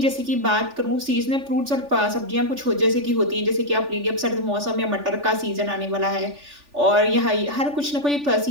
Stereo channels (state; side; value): late; left; 3.4 ms